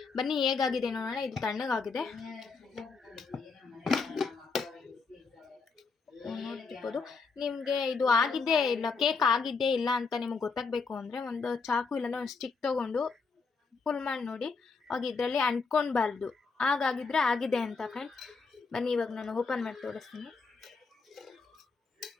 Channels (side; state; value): right; quieter; 4.7 dB